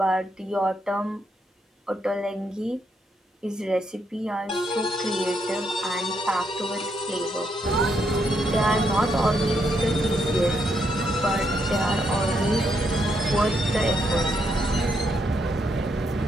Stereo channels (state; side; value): normal; both; correlation 0.77